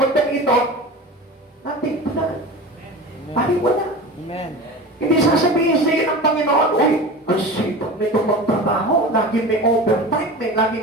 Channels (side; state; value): both; normal; correlation 0.33